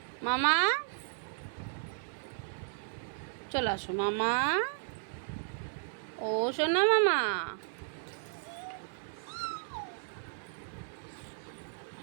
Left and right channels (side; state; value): left; silent; 55 dB below the other